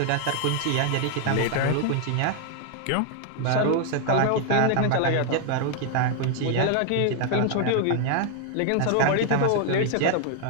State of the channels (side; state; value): both; different; correlation 0.00